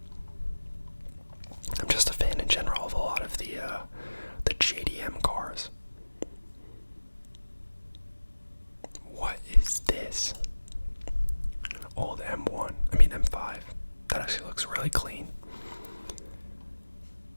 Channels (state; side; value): inverted; both; correlation -1.00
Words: I'm just a fan in general of a lot of the JDM cars. What is this? Old M1. I mean M5. That actually looks really clean.